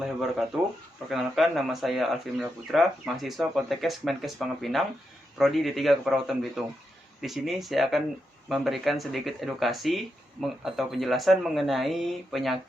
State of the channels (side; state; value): both; normal; correlation 0.85